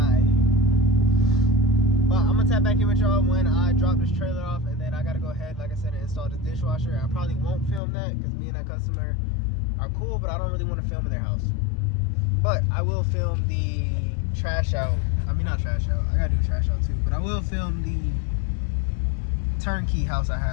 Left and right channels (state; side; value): drops out; right; at 7.8 s